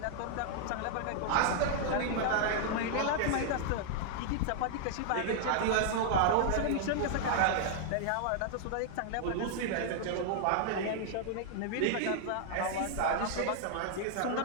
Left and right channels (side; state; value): both; different; correlation -0.01